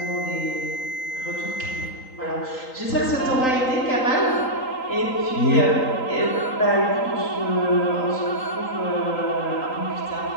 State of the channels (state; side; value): late; right; 3.9 ms